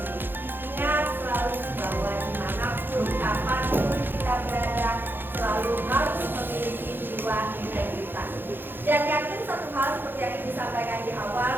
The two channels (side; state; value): left; late; 0.099 ms